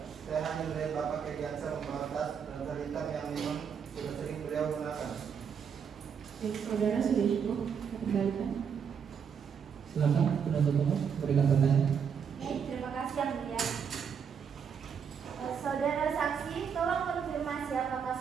Saya hanya melihat Bapak Irdiansyah membawa tas dan tas hitam yang memang sudah sering beliau gunakan. Baik, saudara sudah cukup, kita kembalikan. Silakan penuntut umum berikan pertanyaan. Baik, terima kasih Yang Mulia. Saudara saksi, tolong konfirmasi apakah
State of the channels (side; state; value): left; quieter; 7.1 dB